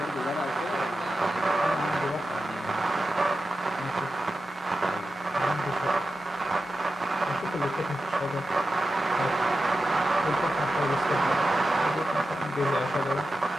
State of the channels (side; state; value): both; normal; correlation 0.91